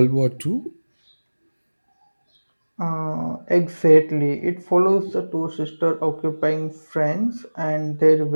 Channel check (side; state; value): both; inverted; correlation -1.00